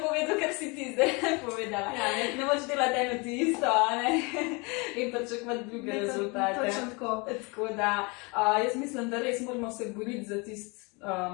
povedal, kar si ti zdaj povedala. Ne moč delati eno ti isto, ne, in pričakovati druge rezultate. Točno tako. Tako da, jaz mislim, da res moramo se boriti za tisto,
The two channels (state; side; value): quieter; right; 29.1 dB